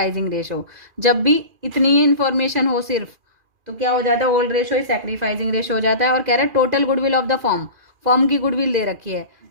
रेशो। जब भी इतनी ही इन्फॉर्मेशन हो सिर्फ तो क्या हो जाता है, ओल्ड रेशो ही सेक्रीफाइसिंग रेशो हो जाता है। और कह रहे हैं total goodwill of the form, form की गुडविल दे रखी है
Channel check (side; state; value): left; late; 2.4 ms